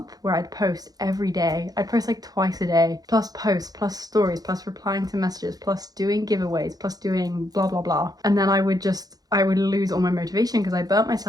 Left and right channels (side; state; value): left; late; 0.18 ms